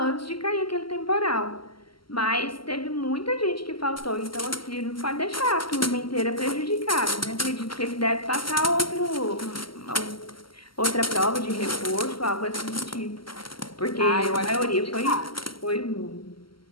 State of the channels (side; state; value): right; late; 0.74 ms